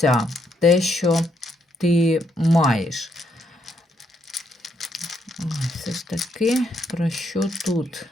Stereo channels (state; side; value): normal; both; correlation 0.75